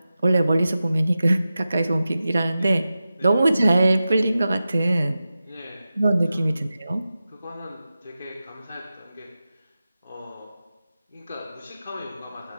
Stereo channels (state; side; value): inverted; both; correlation -0.93